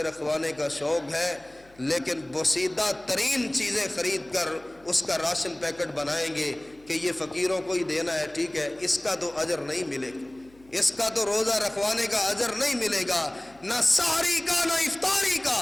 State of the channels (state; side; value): noise; left; hum, 28 dB below the sound